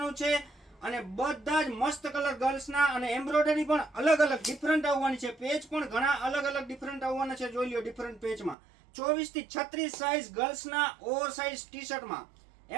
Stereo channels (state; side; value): drops out; left; at 8.6 s